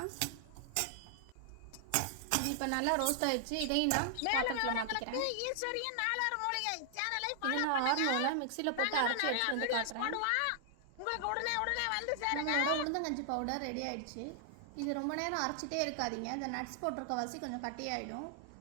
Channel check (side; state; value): both; different; correlation 0.00